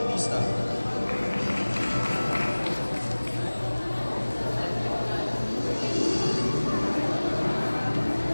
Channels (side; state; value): both; inverted; correlation -1.00